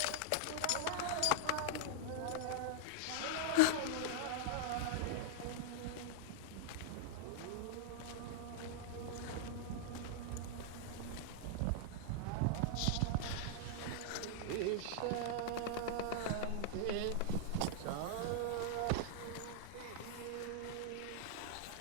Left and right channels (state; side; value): different; both; correlation -0.01